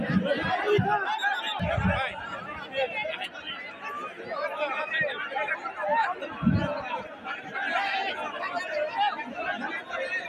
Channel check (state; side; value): identical; both; correlation 1.00